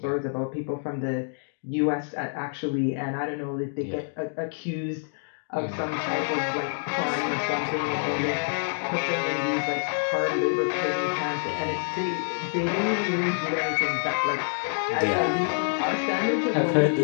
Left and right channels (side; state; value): right; silent; digital silence